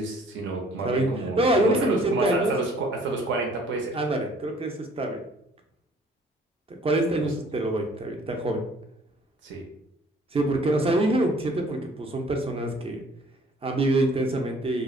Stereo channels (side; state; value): both; normal; correlation 0.57